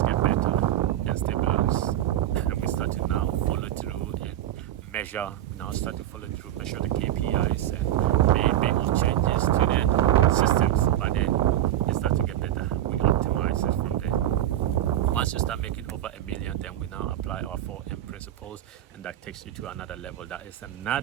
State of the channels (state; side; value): quieter; left; 12.6 dB